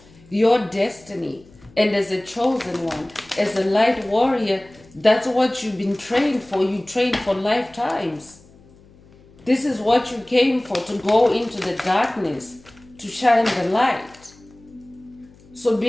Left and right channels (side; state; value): left; noise; hum, 26 dB below the sound